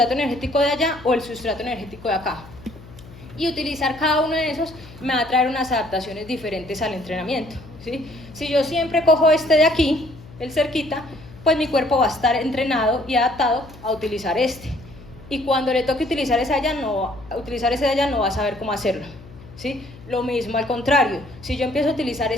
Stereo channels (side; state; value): left; noise; hum, 19 dB below the sound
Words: energético de allá o el sustrato energético de acá. Y utilizar cada uno de esos me va a traer unas adaptaciones diferentes al entrenamiento, ¿sí? Si yo siempre cojo este de aquí, el cerquita, pues mi cuerpo va a estar entrenado y adaptado a utilizar este. Y cuando le toque utilizar ese de allá no va a saber cómo hacerlo, ¿sí? Lo mismo al contrario, si yo empiezo a utilizar